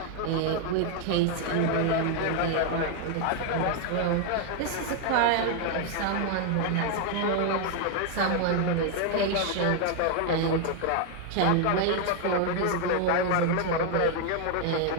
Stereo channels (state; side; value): different; both; correlation 0.00